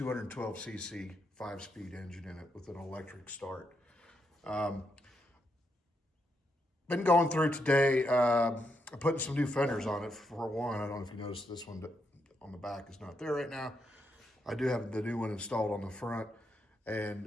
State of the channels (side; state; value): both; normal; correlation 0.81